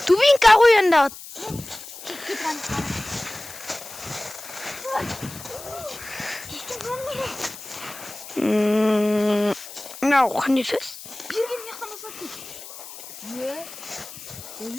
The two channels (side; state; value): left; noise; hiss, 14 dB below the sound